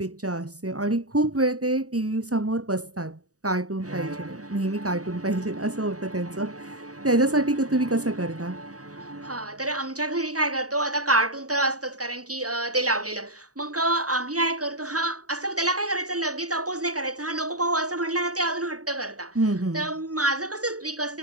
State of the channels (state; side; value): late; left; 0.66 ms